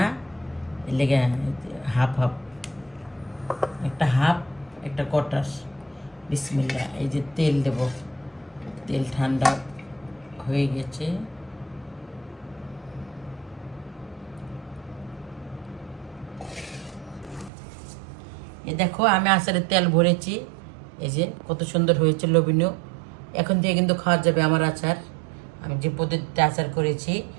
এর লেগে হাফ হাফ, একটা হাফ একটা কটাস। বিসমিল্লাহ। এই যে তেল দেব, তেল ঠান্ডা হয়ে গেছে। এই দেখো আমি আচারের তেল ভরেছি, এই যে কত সুন্দর হয়েছে, লোভনীয়। এখন থেকে কিন্তু খাওয়া যাবে আমার আচার, আমি যে পদ্ধতিতে আচার করেছি।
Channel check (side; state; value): left; drops out; at 17.5 s